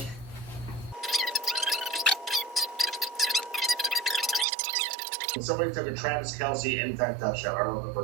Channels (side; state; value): left; drops out; at 4.5 s